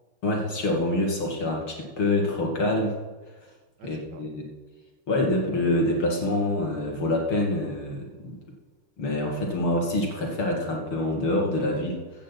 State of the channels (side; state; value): right; late; 6.5 ms